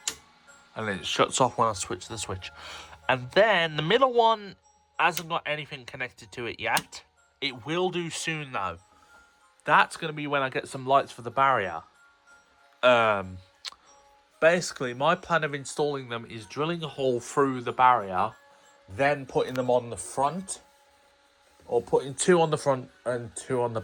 And then it shuts off when I switch the switch. And then the middle one hasn't got anything connected to it yet. It will do soon though. That's going to be when I get some lights for the barrier. Basically, my plan of installing them is drilling a hole through the barrier, then putting them on the front. Or putting 2 on the front and 2 on the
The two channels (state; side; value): identical; both; correlation 1.00